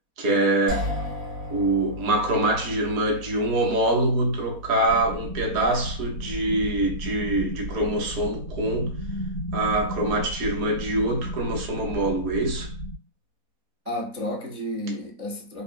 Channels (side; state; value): left; late; 4.1 ms